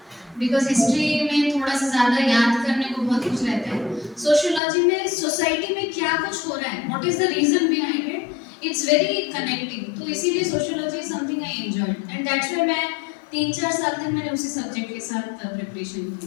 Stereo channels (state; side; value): drops out; right; at 4.6 s